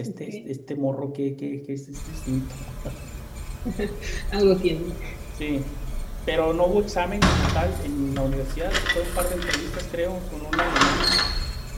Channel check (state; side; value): identical; both; correlation 1.00